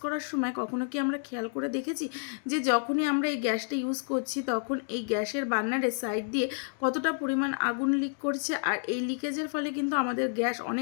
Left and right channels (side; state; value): right; silent; 58 dB below the other